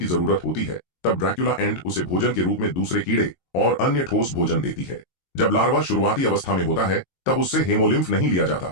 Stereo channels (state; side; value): late; right; 22 ms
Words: जरूरत होती है तब ड्रैकुला एंट उसे भोजन के रूप में दूसरे कीड़े और अन्य ठोस भोजन देती है। जब लार्वा शुरुआती अवस्था में होता है तब उससे हेमोलिम्फ नहीं लिया